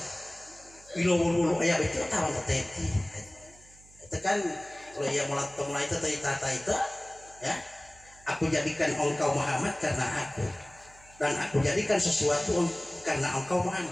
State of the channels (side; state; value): right; noise; hum, 25 dB below the sound